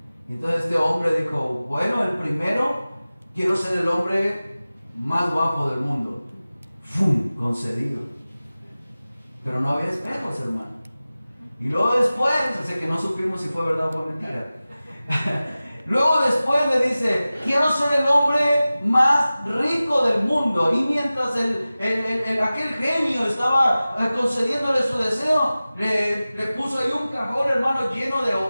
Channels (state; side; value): inverted; both; correlation -0.97